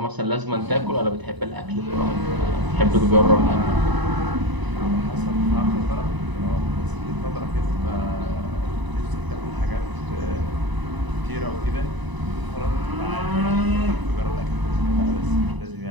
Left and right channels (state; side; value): late; left; 1.0 ms